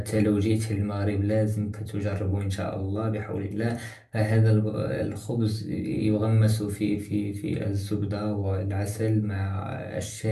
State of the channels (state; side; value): identical; both; correlation 1.00